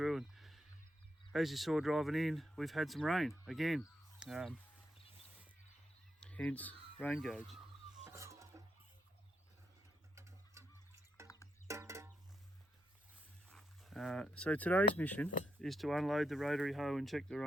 As you saw driving in, we've had some rain again, hence rain gauge. So today's mission is to unload the rotary hoe and check the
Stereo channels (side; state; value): both; normal; correlation 0.82